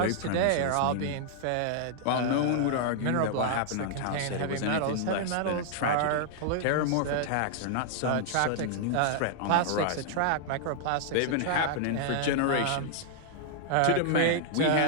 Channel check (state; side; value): different; both; correlation -0.01